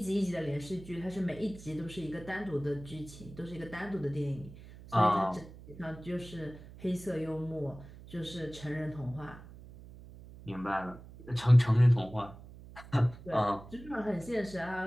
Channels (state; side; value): noise; right; hum, 17 dB below the sound